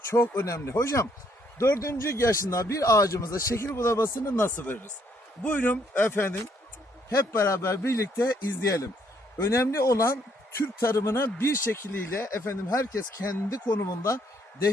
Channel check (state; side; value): normal; both; correlation 0.69